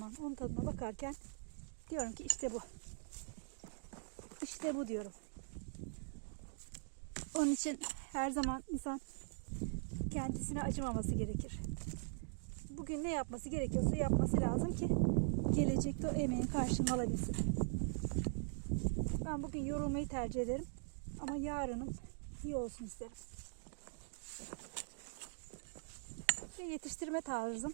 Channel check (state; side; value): silent; left; digital silence